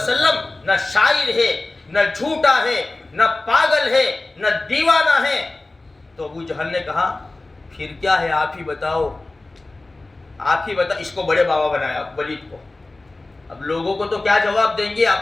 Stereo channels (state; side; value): quieter; right; 3.0 dB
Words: نہ شاعر ہے, نہ جھوٹا ہے, نہ پاگل ہے, نہ دیوانہ ہے. تو ابو جہل نے کہا پھر کیا ہے, آپ ہی بتاؤ. اس کو بڑے بابا بنایا ولید کو. اب لوگوں کو تو کیا جواب دیں گے,